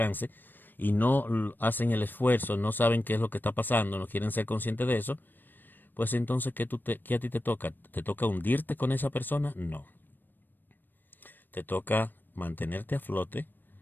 y no hacen el esfuerzo, no saben qué es lo que está pasando, no quieren ser conscientes de eso, pues entonces, ¿qué a ti te toca? ¿Te toca hundirte con esa persona? No. Te toca mantenerte a flote.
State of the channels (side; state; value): right; late; 0.092 ms